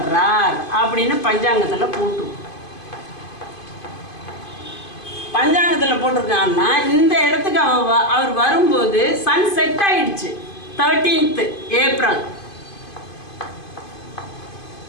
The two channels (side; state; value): right; late; 2.5 ms